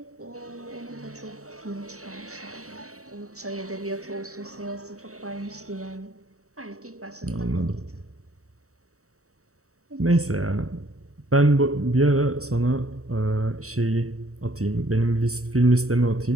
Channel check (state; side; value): late; left; 0.65 ms